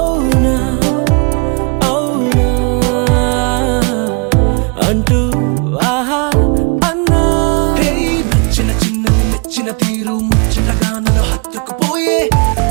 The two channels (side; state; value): left; quieter; 34.0 dB